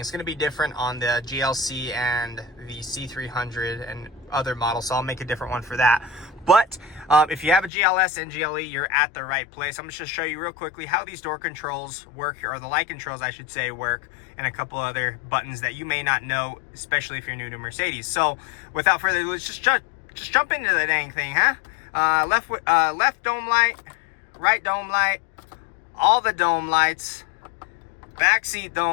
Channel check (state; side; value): drops out; right; at 7.7 s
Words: It's going to be different on the GLC and the C300 and other models, so I'll make a different one for that. But if you have a GLS and GLE, you're at the right place. I'm just going to show you real quickly how these door controls work, or the light controls I should say work, and a couple other buttons that you may not know, especially if you're new to Mercedes. So without further ado, let's just jump into the dang thing, huh? Left dome light, right dome light, all the dome lights, back seat